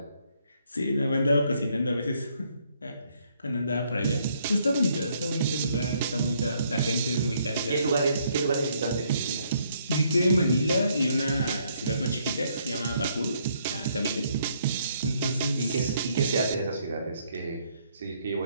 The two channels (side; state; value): both; inverted; correlation -0.70